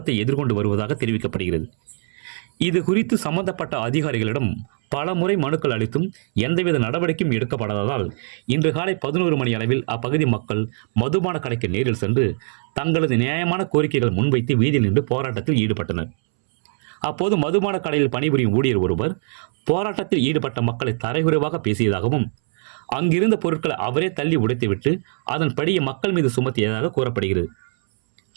எதிர்கொண்டு வருவதாக தெரிவிக்கப்படுகிறது. இது குறித்து சம்பந்தப்பட்ட அதிகாரிகளிடம் பல முறை மனுக்கள் அளித்தும் எந்தவித நடவடிக்கையும் எடுக்கப்படாததால் இன்று காலை 11 மணி அளவில் அப்பகுதி மக்கள் மதுபான கடைக்கு நேரில் சென்று தங்களது நியாயமான கோரிக்கைகள் முன்வைத்து வீதியில் நின்று போராட்டத்தில் ஈடுபட்டனர். அப்போது மதுபான கடையில் பணிபுரியும் ஊழியர் ஒருவர் போராட்டத்தில் ஈடுபட்ட மக்களை தரைகுறைவாக பேசியதாகவும் அங்கிருந்த பொருட்களை அவரே தள்ளி உடைத்துவிட்டு அதன்படியே மக்கள் மீது சுமத்தியதாக கூறப்படுகிறது.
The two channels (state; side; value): silent; left; 64 dB below the other